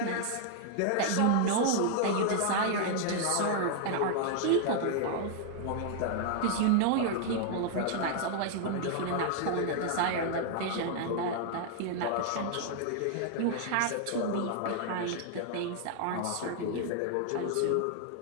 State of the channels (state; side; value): different; both; correlation 0.00